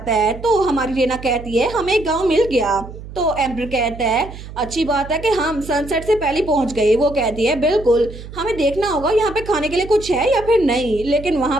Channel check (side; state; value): right; noise; hum, 13 dB below the sound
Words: है। तो हमारी रेना कहती है हमें एक गांव मिल गया। तो एम्पर कहता है अच्छी बात है कि हम सनसेट से पहले पहुंच गए। वो कहती है बिल्कुल, हमें देखना होगा यहाँ पे खाने के लिए कुछ है या फिर नहीं, लेकिन वहाँ